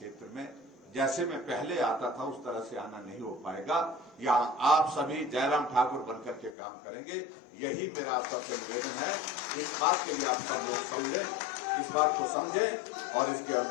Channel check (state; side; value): drops out; right; at 6.6 s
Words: में जैसे मैं पहले आता था उस तरह से आना नहीं हो पाएगा। यहाँ आप सभी जयराम ठाकुर बनकर के काम करेंगे, यही मेरा आप सबसे निवेदन है। इस बात के लिए आप सब लोग समझें, इस बात को समझें और इसके